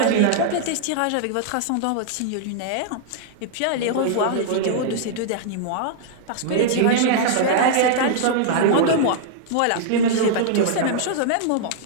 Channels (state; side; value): different; both; correlation -0.01